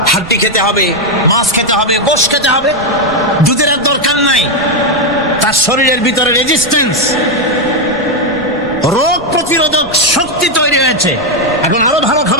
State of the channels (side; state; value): right; noise; rumble, 18 dB below the sound